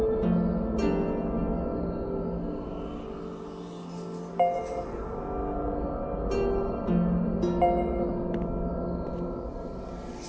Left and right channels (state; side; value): identical; both; correlation 1.00